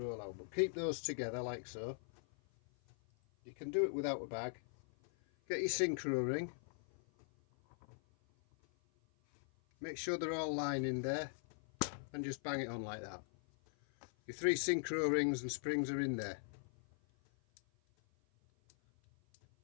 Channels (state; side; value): silent; right; 51 dB below the other